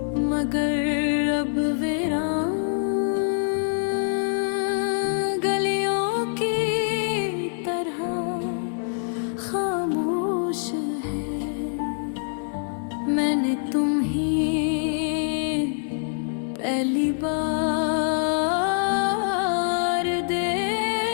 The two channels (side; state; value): right; silent; 62 dB below the other